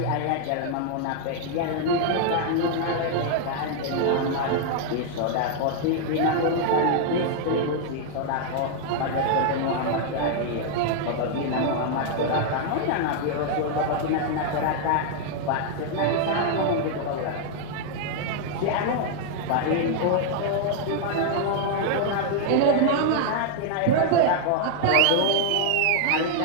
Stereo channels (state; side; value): different; both; correlation 0.00